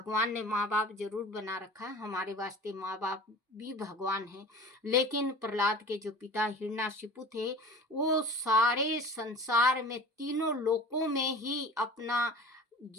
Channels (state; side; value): normal; both; correlation 0.39